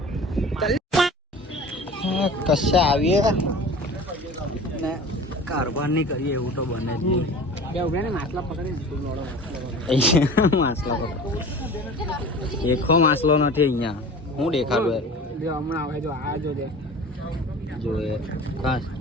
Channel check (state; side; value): normal; both; correlation 0.39